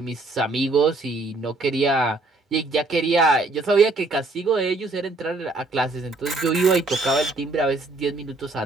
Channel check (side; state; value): left; quieter; 3.1 dB